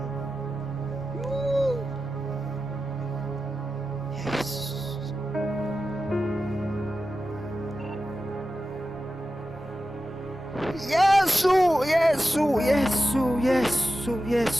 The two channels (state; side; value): normal; both; correlation 0.92